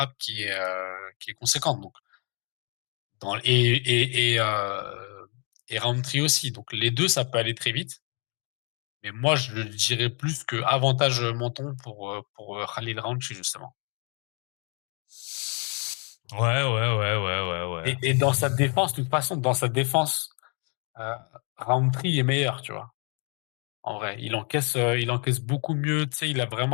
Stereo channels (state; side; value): quieter; right; 36.8 dB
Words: qui est conséquente. Donc, dans, et Roundtree aussi. Donc, les deux, ça peut aller très vite. Mais moi, je dirais plus que avantage menton pour Khalil Roundtree, justement. Ouais, ouais, ouais, ouais, ouais, ouais. Et dans sa défense, de toute façon, dans sa défense, euh, Roundtree est meilleur, tu vois. En vrai, il encaisse beaucoup mieux. Tu sais, il a